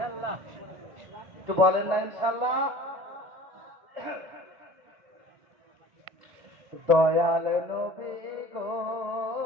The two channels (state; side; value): late; left; 1.7 ms